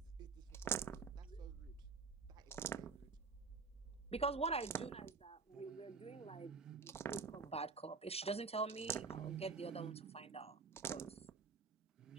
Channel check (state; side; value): quieter; left; 4.7 dB